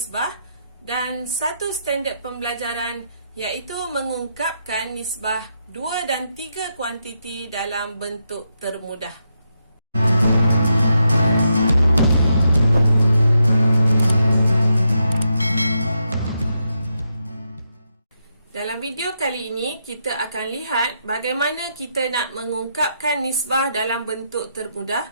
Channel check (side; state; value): both; inverted; correlation -0.82